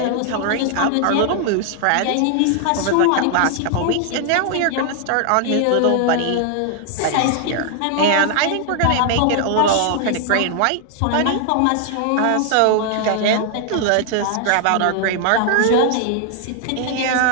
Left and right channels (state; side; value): different; both; correlation 0.00